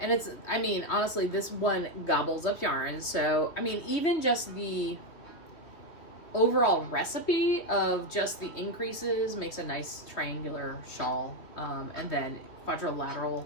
I mean, honestly, this one gobbles up yarn. So, I mean, even just the overall recipe of just the increases makes a nice triangular shawl. And then quadrilateral,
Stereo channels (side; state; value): right; late; 2.9 ms